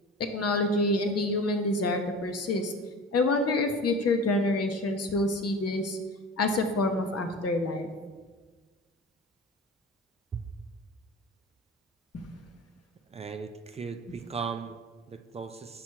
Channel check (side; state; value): both; normal; correlation 0.36